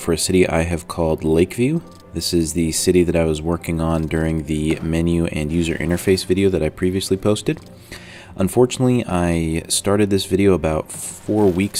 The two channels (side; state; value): both; identical; correlation 1.00